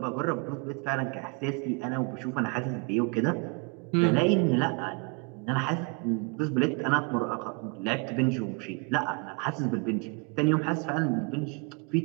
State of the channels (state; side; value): quieter; left; 31.5 dB